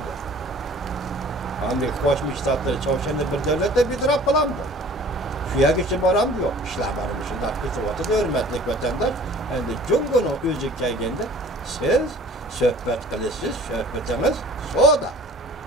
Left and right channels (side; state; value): both; normal; correlation 0.48